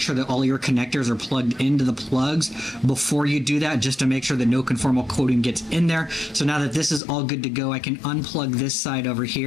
that all your connectors are plugged into the plugs before you do that, just to make sure that no conformal coating gets in there. So now that this is all good to go, I can unplug this side over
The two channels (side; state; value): right; drops out; at 7.0 s